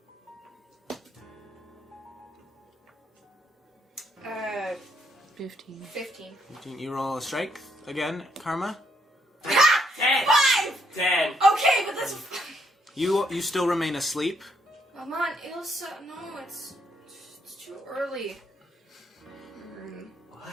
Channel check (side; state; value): both; normal; correlation 0.74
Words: Uh, 15. 15. 15. You roll a strength again, Karma. 10! 5! 10! Okay, but that's... You still remain asleep. Come on, Ilsa. No, it's too early. What